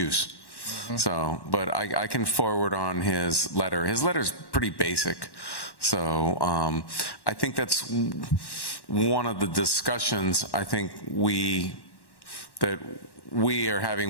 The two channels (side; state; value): right; late; 1.1 ms